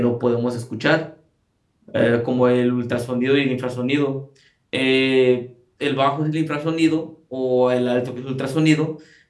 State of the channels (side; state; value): both; identical; correlation 1.00